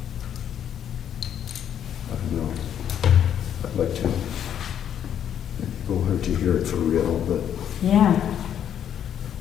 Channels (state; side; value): quieter; right; 9.5 dB